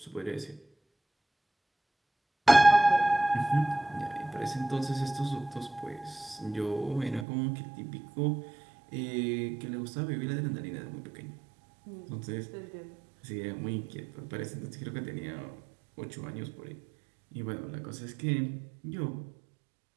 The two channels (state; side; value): drops out; left; at 7.2 s